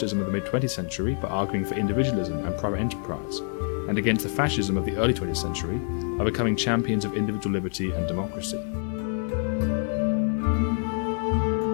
of the mid-20th century by arguing for individualism and private enterprise, and against the fascism of the early 20th century by becoming champions of individual liberty and democracy.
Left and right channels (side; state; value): right; silent; 61 dB below the other